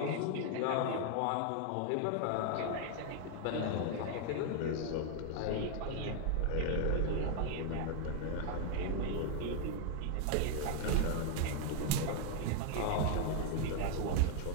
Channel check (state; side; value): different; both; correlation 0.00